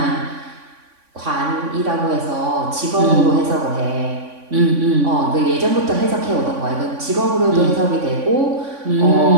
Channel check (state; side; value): late; left; 3.5 ms